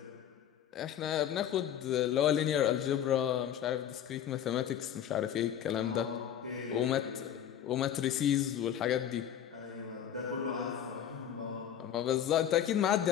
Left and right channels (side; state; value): right; quieter; 9.9 dB